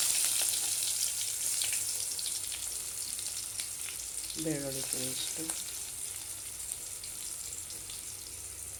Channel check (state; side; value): identical; both; correlation 1.00